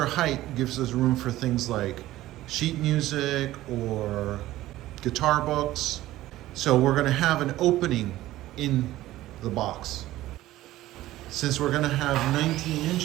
height gives us room for things like sheet music or guitar books. So we're gonna have an opening in the box. Since we're gonna have 19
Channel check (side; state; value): left; quieter; 15.6 dB